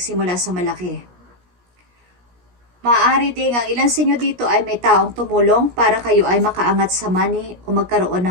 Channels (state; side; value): late; left; 17 ms